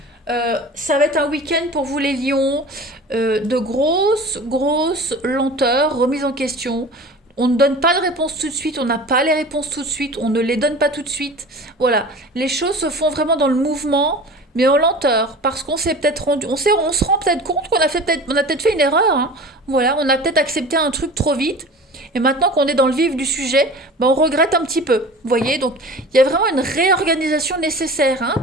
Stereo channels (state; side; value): normal; both; correlation 0.38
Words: ça va être un week-end pour vous les lions, de grosses lenteurs, remise en question. On ne donne pas de réponse tout de suite, on n'a pas les réponses tout de suite, on ne les donne pas tout de suite. Voilà, les choses se font vraiment dans le mouvement, mais en lenteur, parce qu'on s'est peut-être rendu, on se rend peut-être compte qu'on a peut-être fait une erreur. Hein. Voilà, on a peut-être accepté un truc trop vite. Et maintenant qu'on est dans le vif du sujet, on regrette un petit peu. Vous voyez, donc il y a vraiment une réorganisation nécessaire hein,